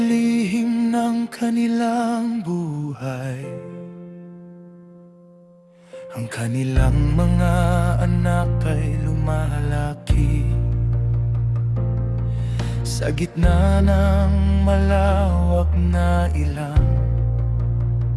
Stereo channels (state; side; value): identical; both; correlation 1.00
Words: ng kanilang buhay? Ang kanilang mga anak ay lumalaki sa gitna ng malawak na ilang,